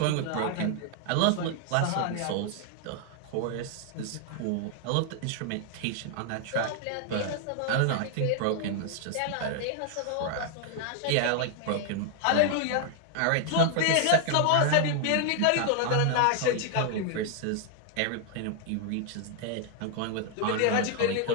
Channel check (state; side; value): different; both; correlation 0.00